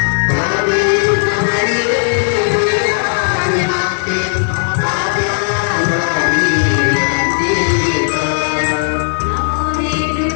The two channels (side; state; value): right; silent; digital silence